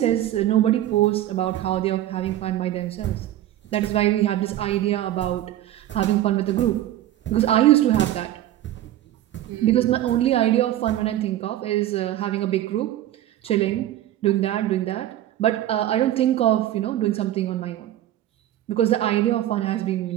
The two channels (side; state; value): left; quieter; 13.2 dB